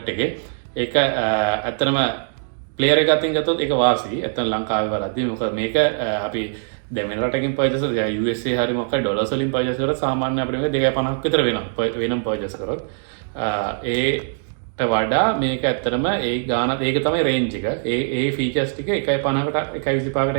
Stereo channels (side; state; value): left; silent; digital silence